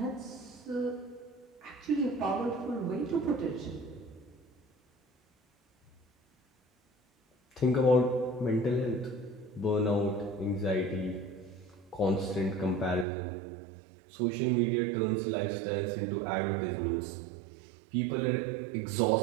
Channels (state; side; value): drops out; left; at 13.1 s